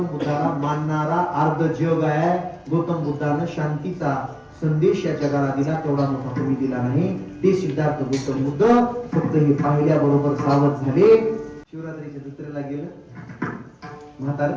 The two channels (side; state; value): both; identical; correlation 1.00